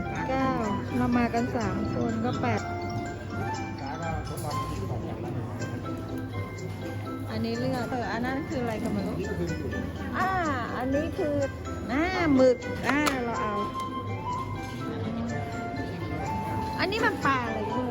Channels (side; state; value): both; identical; correlation 1.00